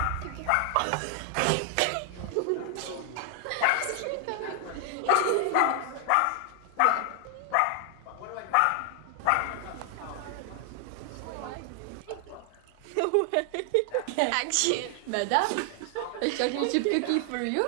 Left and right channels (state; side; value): different; both; correlation 0.00